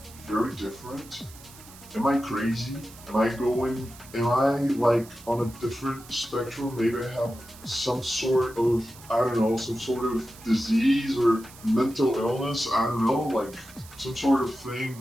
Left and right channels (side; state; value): right; noise; hiss, 20 dB below the sound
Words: Very different? Am I crazy? Am I like on a different spectrum? Maybe I have some sort of, I don't know, some sort of disease or mental illness. I don't know, like some sort of thing